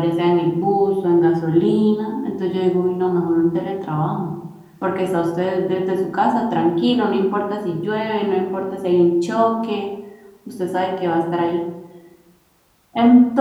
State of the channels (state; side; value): identical; both; correlation 1.00